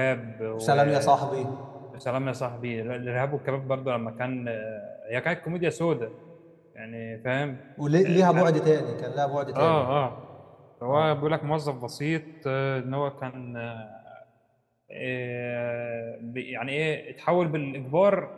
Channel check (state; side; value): identical; both; correlation 1.00